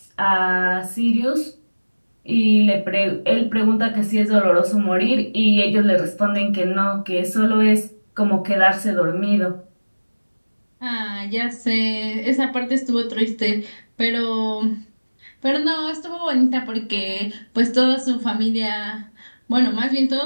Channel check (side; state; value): both; inverted; correlation -1.00